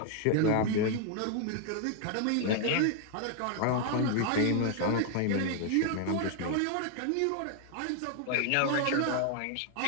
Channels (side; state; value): both; different; correlation 0.00